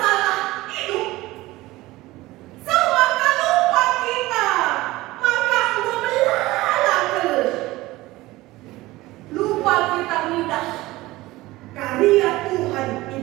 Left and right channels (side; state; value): left; quieter; 18.8 dB